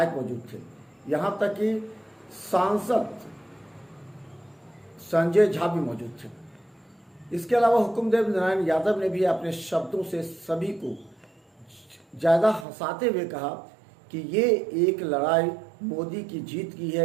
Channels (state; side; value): drops out; left; at 12.7 s